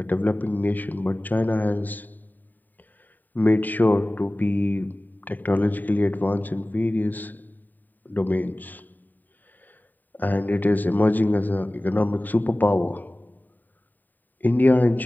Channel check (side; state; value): right; late; 0.088 ms